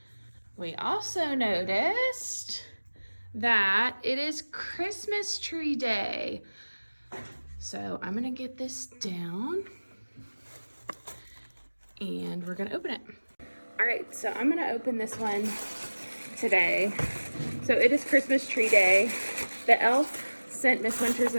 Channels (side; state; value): both; inverted; correlation -1.00